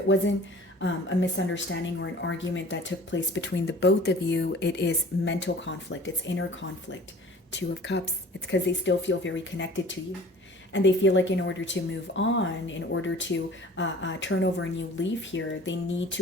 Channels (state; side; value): normal; both; correlation 0.46